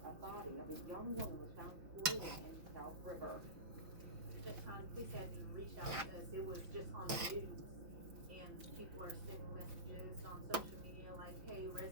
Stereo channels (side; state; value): left; late; 5.9 ms